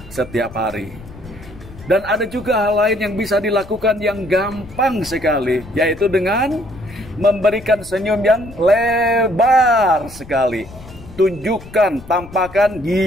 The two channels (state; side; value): noise; left; rumble, 18 dB below the sound